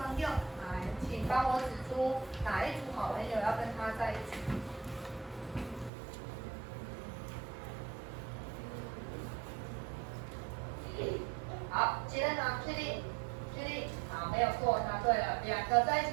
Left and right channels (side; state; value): left; drops out; at 5.9 s